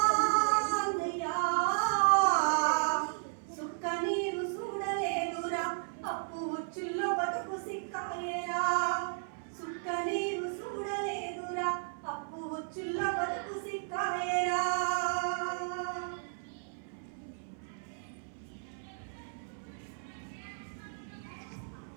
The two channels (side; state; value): left; silent; 55 dB below the other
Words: సుక్క నీరు చూడలేదురా అప్పు ఉచ్చుల్లో బతుకు సిక్కాలేరా సుక్క నీరు చూడలేదురా అప్పు ఉచ్చుల్లో బతుకు సిక్కాలేరా